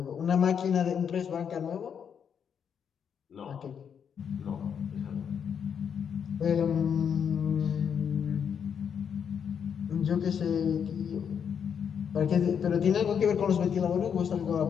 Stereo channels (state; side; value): quieter; right; 7.6 dB